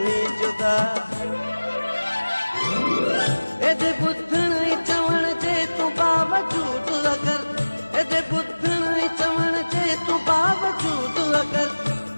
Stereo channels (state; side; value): inverted; both; correlation -1.00